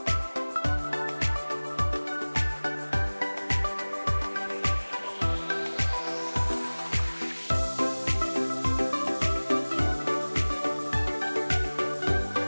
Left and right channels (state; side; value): inverted; both; correlation -1.00